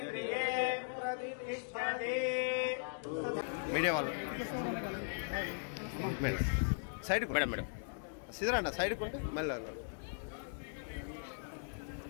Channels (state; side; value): silent; right; digital silence